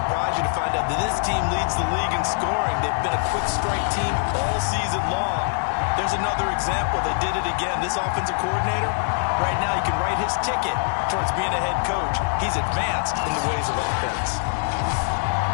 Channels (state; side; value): silent; right; 56 dB below the other